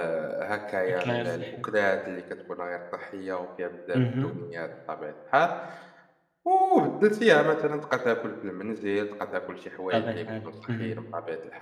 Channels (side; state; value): both; identical; correlation 1.00